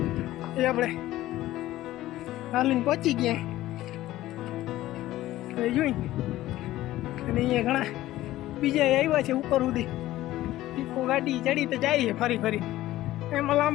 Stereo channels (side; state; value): right; quieter; 15.4 dB